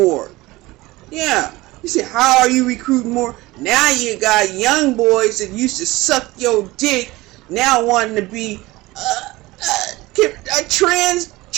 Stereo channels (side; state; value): left; quieter; 19.9 dB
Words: Yeah. You say, how are you recruiting more? Now you got young boys that used to suck your dick now wanting to be a